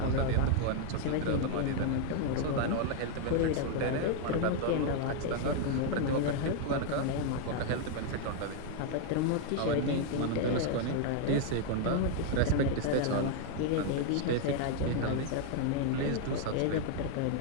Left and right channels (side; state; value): both; different; correlation 0.00